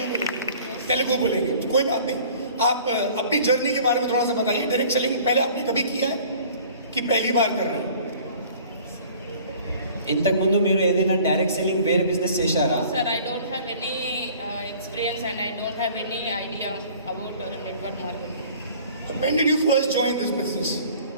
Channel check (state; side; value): inverted; both; correlation -0.50